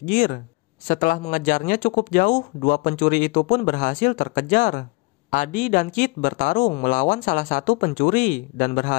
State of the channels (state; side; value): quieter; right; 26.5 dB